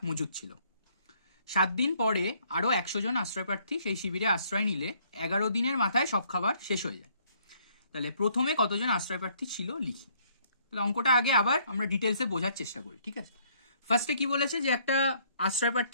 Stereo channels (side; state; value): both; inverted; correlation -0.65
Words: মজুদ ছিল। 7 দিন পরে আরো 100 জন আশ্রয় প্রার্থী সেই শিবিরে আশ্রয় নিলে 11 দিনের মাথায় সব খাবার শেষ হয়ে যায়। তাহলে প্রথমে কতজন আশ্রয় প্রার্থী ছিল লিখি। তাহলে অঙ্কটা আগে আবার আমরা ডিটেলসে বোঝার চেষ্টা করি। ঠিক আছে, ফার্স্টে কি বলেছে যে একটা আশ্রয়